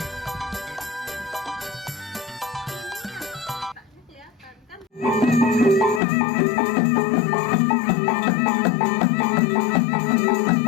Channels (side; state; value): right; drops out; at 6.0 s